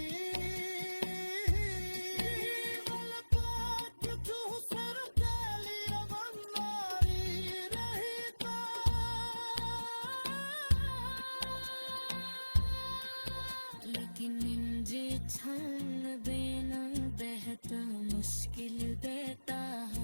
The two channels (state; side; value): inverted; both; correlation -1.00